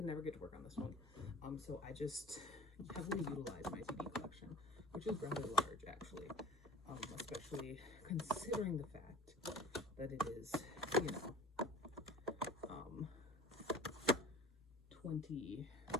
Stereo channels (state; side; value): normal; both; correlation 0.42